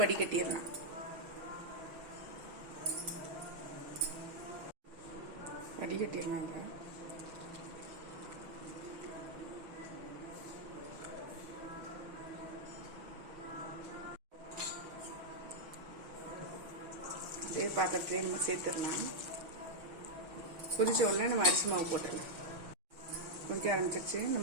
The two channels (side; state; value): left; late; 6.1 ms